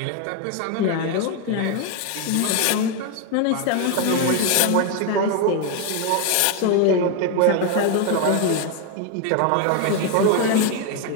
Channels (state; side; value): different; both; correlation 0.01